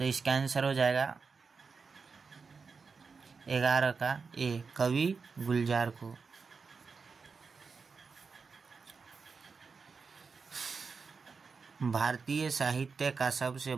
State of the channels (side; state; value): left; quieter; 5.0 dB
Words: इसका आंसर हो जाएगा 11 का ए, कवि गुलजार को। भारतीय साहित्य का सबसे